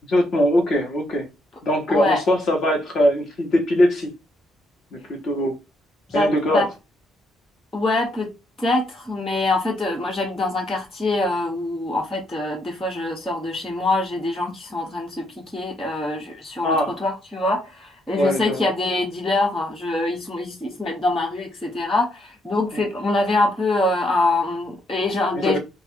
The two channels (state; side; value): normal; both; correlation 0.75